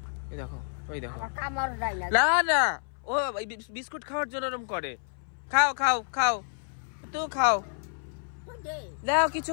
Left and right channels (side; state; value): right; silent; 58 dB below the other